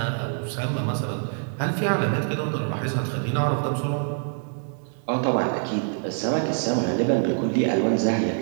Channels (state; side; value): silent; left; 59 dB below the other